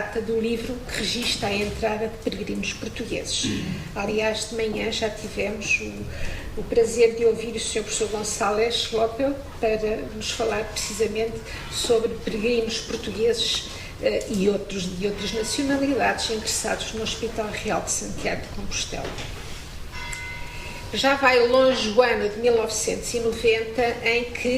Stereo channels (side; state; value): both; identical; correlation 1.00